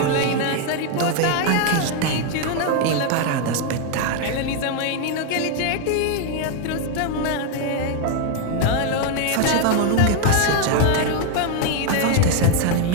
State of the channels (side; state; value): both; different; correlation 0.01